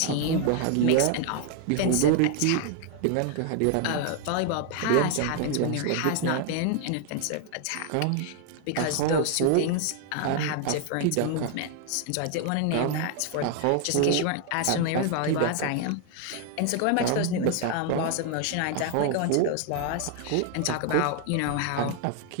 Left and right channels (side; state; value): both; different; correlation 0.00